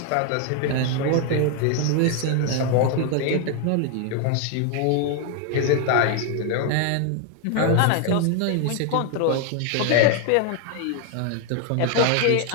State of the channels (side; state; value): both; different; correlation 0.01